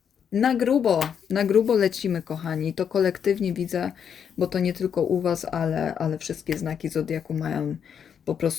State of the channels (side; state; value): right; quieter; 7.8 dB